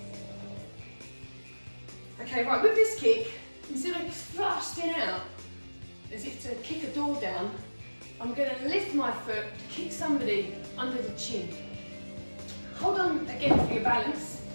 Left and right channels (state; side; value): inverted; both; correlation -1.00